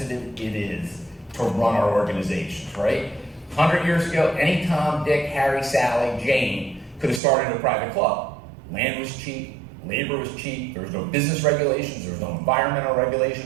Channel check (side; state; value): left; drops out; at 7.2 s